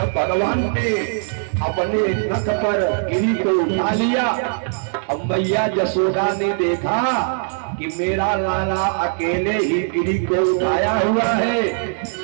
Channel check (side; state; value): left; silent; 65 dB below the other